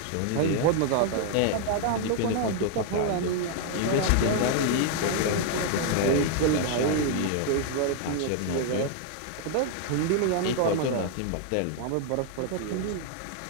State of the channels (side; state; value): both; different; correlation 0.00